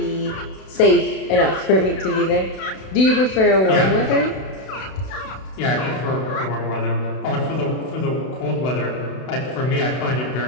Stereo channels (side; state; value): right; late; 32 ms